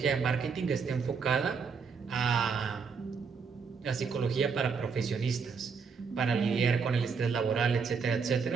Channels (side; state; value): left; quieter; 5.5 dB